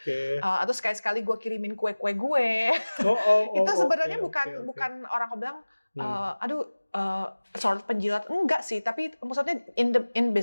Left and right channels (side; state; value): both; inverted; correlation -1.00